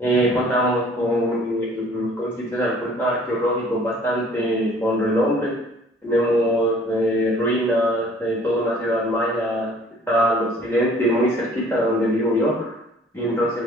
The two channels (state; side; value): normal; both; correlation 0.54